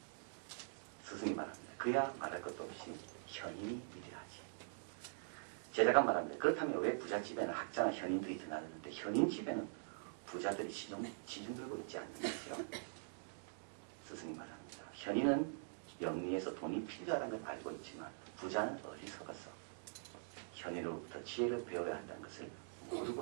스승이 말합니다. 그야 말할 것도 없이 현인이 위대하지. 제자가 말합니다. 그렇다면 왜 부잣집에는 학자나 현인들이 드나드는데 현인집에는 부자들이 시중 들고 있지 않는 거죠? 스승이 말합니다. 현인은 영리에서 돈이 필요하다는 걸 알고 있지만 부자는 어리석어서 현인으로부터 지혜를 배워야 한다는 것을 모르고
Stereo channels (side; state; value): left; silent; digital silence